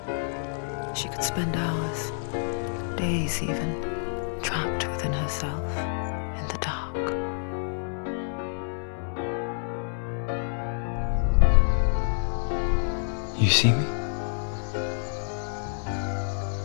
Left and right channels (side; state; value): right; silent; 59 dB below the other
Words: She could spend hours, days even, trapped within herself, in the dark. You see me?